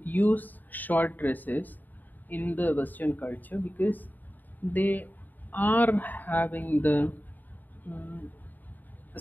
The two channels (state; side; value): late; right; 0.087 ms